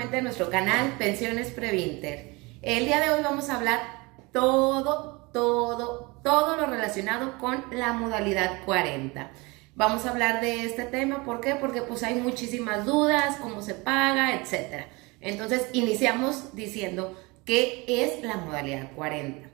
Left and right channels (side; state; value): left; quieter; 25.5 dB